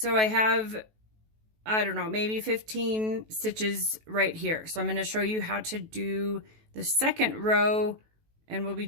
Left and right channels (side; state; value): left; late; 18 ms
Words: I have, I don't know, maybe 15 stitches right here. So I'm going to show you how to do the second row, and we'll be